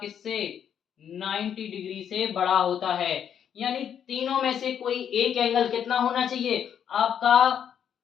किससे 90 डिग्री से बड़ा होता है। यानी तीनों में से कोई एक एंगल कितना होना चाहिए आपका,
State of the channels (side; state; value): right; quieter; 8.7 dB